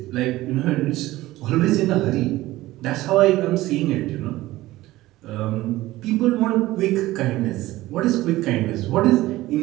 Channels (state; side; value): quieter; left; 17.1 dB